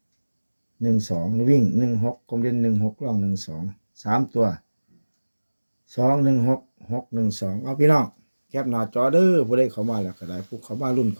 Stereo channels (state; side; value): inverted; both; correlation -1.00